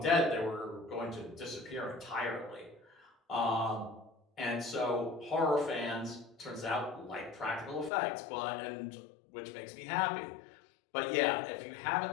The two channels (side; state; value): right; drops out; at 7.9 s